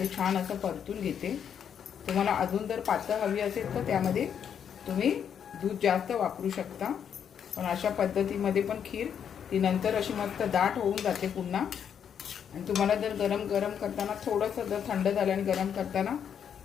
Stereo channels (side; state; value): right; quieter; 8.2 dB